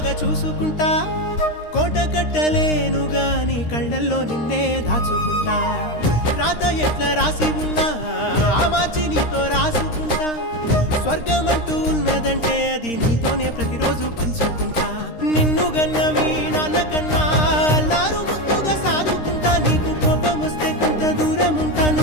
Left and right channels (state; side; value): late; right; 13 ms